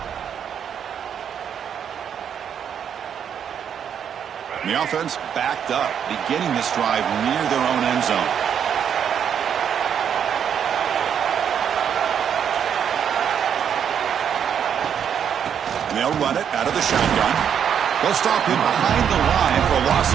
The offense backed up, beginning this drive near their own end zone. They'll run it out of the shotgun. They'll stop him behind the line for a loss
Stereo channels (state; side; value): quieter; left; 8.3 dB